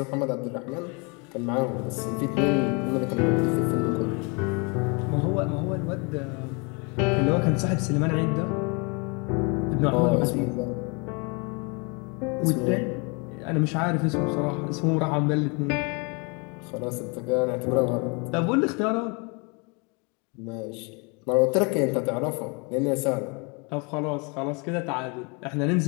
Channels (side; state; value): right; quieter; 32.1 dB